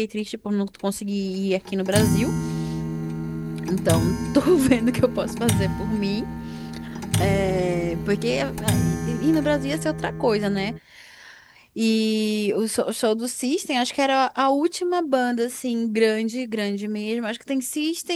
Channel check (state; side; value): identical; both; correlation 1.00